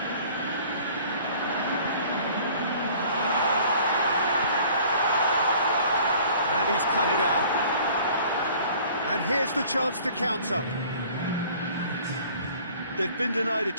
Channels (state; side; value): inverted; both; correlation -0.51